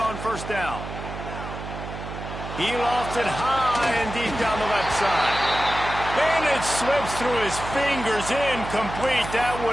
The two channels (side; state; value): right; noise; hum, 9 dB below the sound